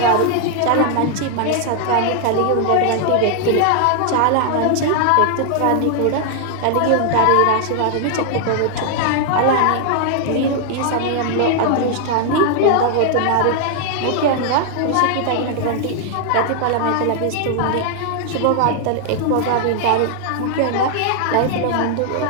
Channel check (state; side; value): different; both; correlation 0.00